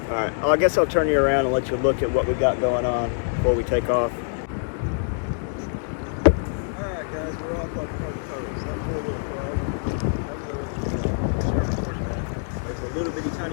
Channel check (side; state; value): right; silent; 62 dB below the other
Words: All right, well, I guess I'll turn you around and let you look at what we got going on before we take off. All right, guys, we're off like a herd of turtles. That four-wheel frog. There's a little bitty